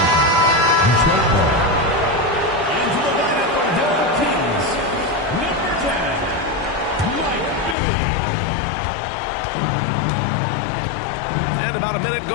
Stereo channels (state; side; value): drops out; right; at 7.8 s